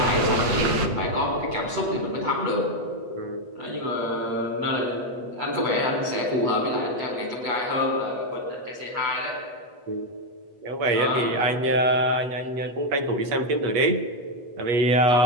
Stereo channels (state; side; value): late; left; 8.1 ms